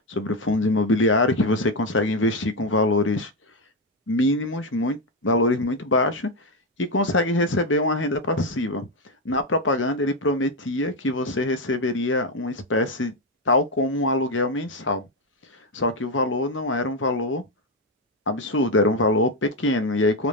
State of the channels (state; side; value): normal; both; correlation 0.08